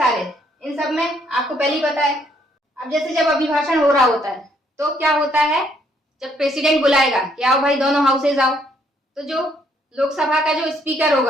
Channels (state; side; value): normal; both; correlation 0.69